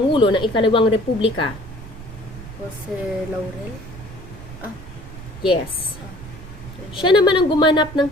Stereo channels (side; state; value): right; noise; rumble, 15 dB below the sound